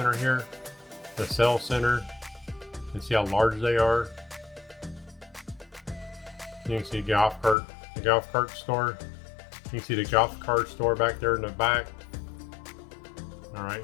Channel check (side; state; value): right; drops out; at 7.6 s